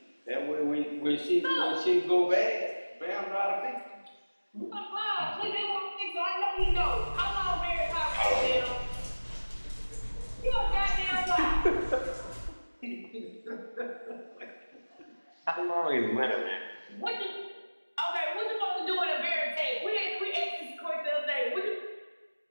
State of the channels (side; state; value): both; inverted; correlation -1.00